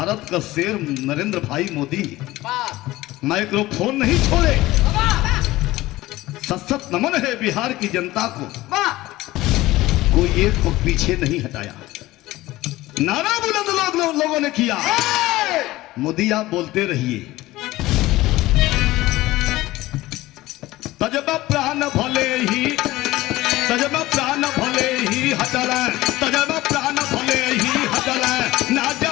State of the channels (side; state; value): right; quieter; 17.8 dB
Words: का शेर नरेंद्र भाई मोदी माइक्रोफोन नहीं छोड़े। सशक्त नमन है बिहार की जनता को, कोई एक को पीछे नहीं हटाया। नारा बुलंद लोगों ने किया। मोदी आप बोलते रहिए, तजब प्राण भले ही, तजब प्राण भले ही हटल, तजब प्राण भले ही हटल, ना